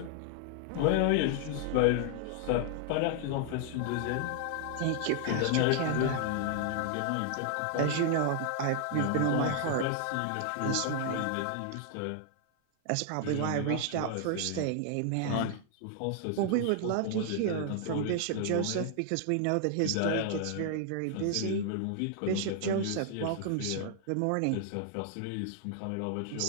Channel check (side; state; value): both; different; correlation 0.00